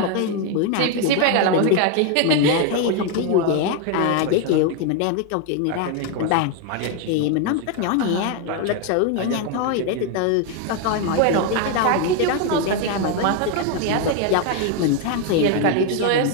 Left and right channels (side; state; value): both; different; correlation 0.01